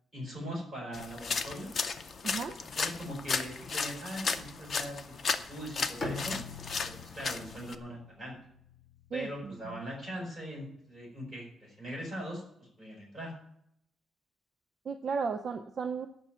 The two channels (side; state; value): both; normal; correlation 0.77